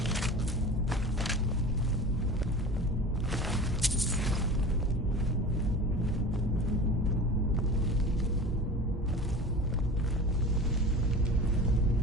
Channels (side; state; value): both; normal; correlation 0.36